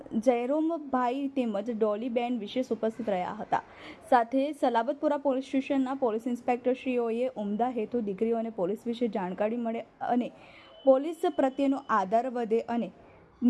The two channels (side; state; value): both; identical; correlation 1.00